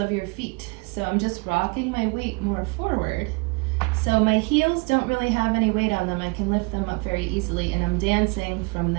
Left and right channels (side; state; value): left; quieter; 29.5 dB